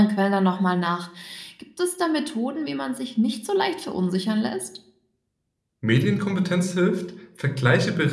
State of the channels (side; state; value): both; identical; correlation 1.00